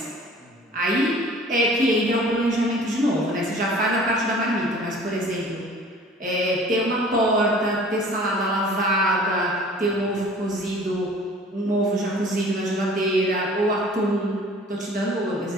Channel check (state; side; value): normal; both; correlation 0.48